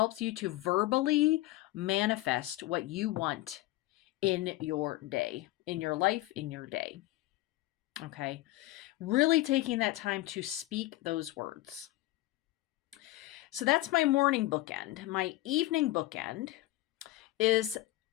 you to verbally manifest what you want in your day, in your life, in your day. Okay. Really taking that time to speak those words. So that's my morning bookend. My evening bookend is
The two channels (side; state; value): right; quieter; 17.4 dB